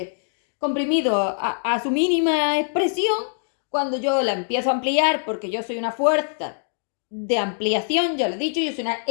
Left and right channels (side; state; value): right; silent; digital silence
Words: comprimido a su mínima expresión, cuando yo la empiezo a ampliar, porque yo soy una fuerza de ampliación, ya lo he dicho, yo soy una